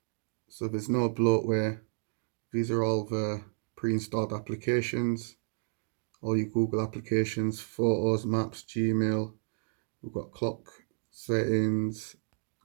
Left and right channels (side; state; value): left; silent; digital silence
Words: So there's no bloatware. These are all the pre-installed applications. All your Google applications, Photos, Maps, Gmail. We've got clock settings,